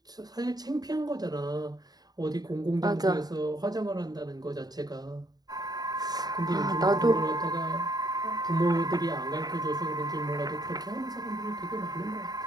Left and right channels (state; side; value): late; left; 0.19 ms